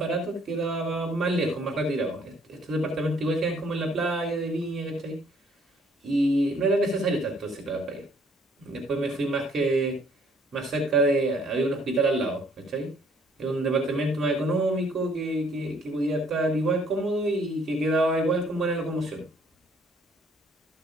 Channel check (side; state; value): both; normal; correlation 0.62